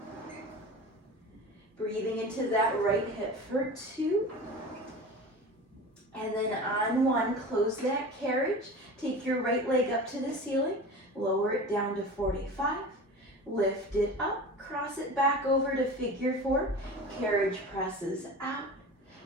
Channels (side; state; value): both; normal; correlation 0.34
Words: Breathing into that right hip for 2. And then on 1, close that carriage. Take your right leg up to the ceiling. Lower it down to 45. Lift it up. Cross it back over to figure 4. Carriage presses out.